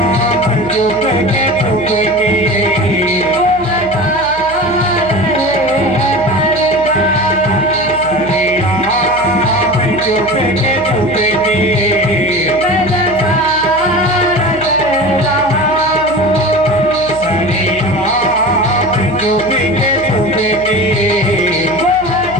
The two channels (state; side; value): noise; right; hum, 17 dB below the sound